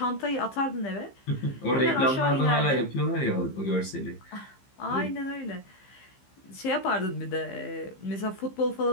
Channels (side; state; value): right; late; 15 ms